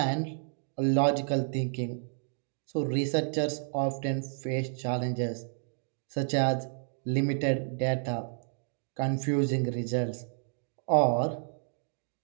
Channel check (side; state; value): left; silent; digital silence